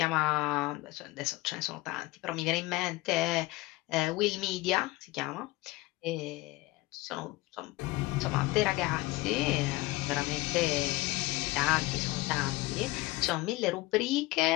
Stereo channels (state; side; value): quieter; right; 20.7 dB